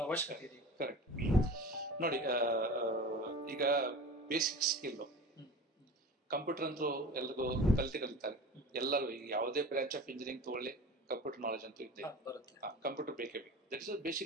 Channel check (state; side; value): normal; both; correlation 0.36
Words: ಅವಶ್ಯಕತೆ ಇದೆ? ಕರೆಕ್ಟ್. ನೋಡಿ, ಈಗ ಬೇಸಿಕ್ ಸ್ಕಿಲ್ ಕಂಪ್ಯೂಟರ್ ಅಂತೂ ಎಲ್ರಿಗೂ ಕಲಿತಾರೆ. ಎಲ್ಲರೂ ಈಗ ಯಾವುದೇ ಬ್ರಾಂಚ್ ಆಫ್ ಇಂಜಿನಿಯರಿಂಗ್ ತಗೊಳ್ಳಿ, ಕಂಪ್ಯೂಟರ್ ನಾಲೆಜ್ ಅಂತೂ ಇದೆ. ಕಂಪ್ಯೂಟರ್ ಬೇಕೇ ಬೇಕು. That is